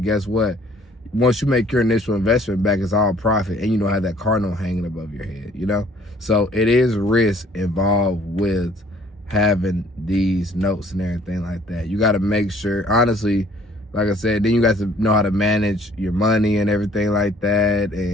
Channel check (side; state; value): both; normal; correlation 0.58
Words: what? Once you make your initial investment back, it's all profit, and you don't have that car note hanging above your head, you know? So it is risk involved with having these notes and everything like that. You got to make sure, honestly, like I said, then you got to know how to manage your money and everything like that,